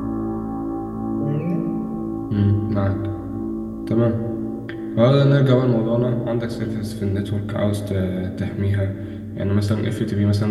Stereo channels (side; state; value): both; identical; correlation 1.00